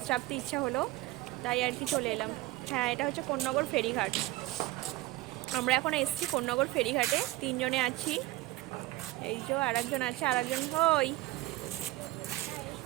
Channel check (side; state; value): left; quieter; 18.5 dB